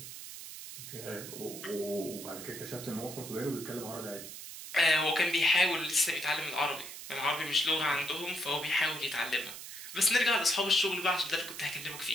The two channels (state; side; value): noise; right; hiss, 11 dB below the sound